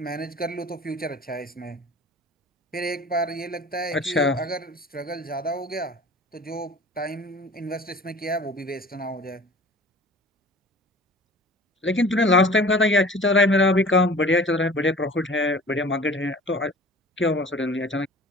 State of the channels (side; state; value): both; normal; correlation 0.44